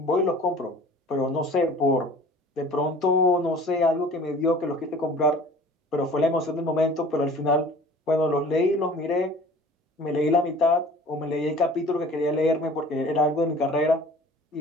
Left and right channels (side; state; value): both; normal; correlation 0.46